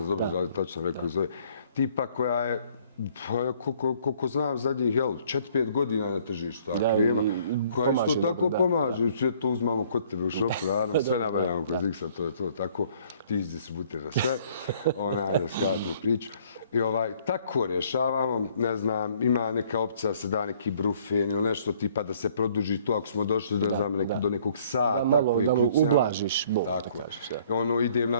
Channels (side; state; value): both; inverted; correlation -0.60